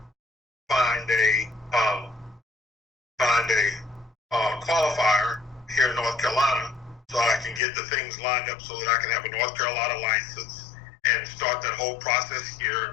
find a qualifier here in North Carolina, so I can get the things lined up so that I can have a North Carolina license and start that whole process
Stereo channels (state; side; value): drops out; right; at 7.6 s